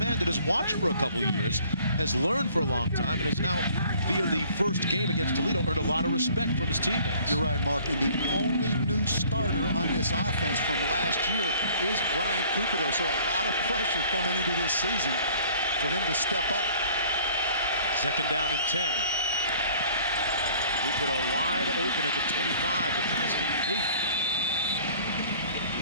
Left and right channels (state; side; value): inverted; both; correlation -0.54